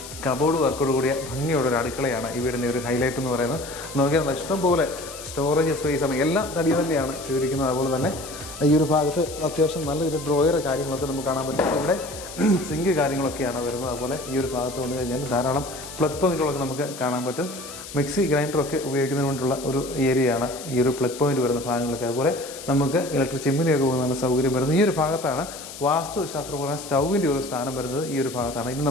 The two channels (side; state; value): left; noise; hiss, 13 dB below the sound